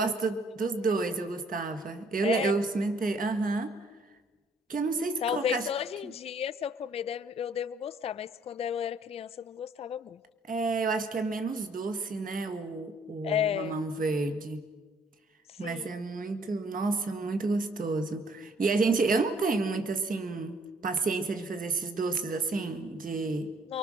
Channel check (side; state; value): both; normal; correlation 0.62